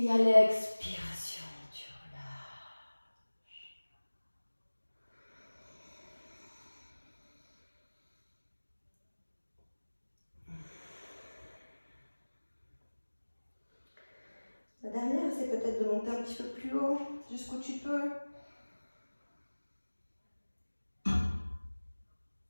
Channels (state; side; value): inverted; both; correlation -1.00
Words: à l'expiration, tu relâches. La dernière, c'est peut-être de monter un petit peu plus haut, jusqu'où tu peux.